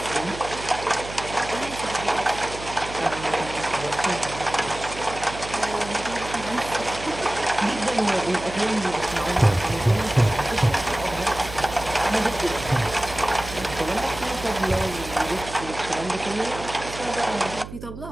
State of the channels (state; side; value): noise; right; hum, 12 dB below the sound